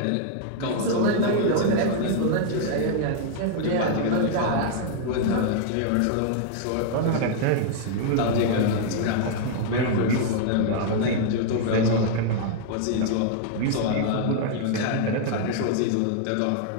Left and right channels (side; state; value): both; different; correlation 0.00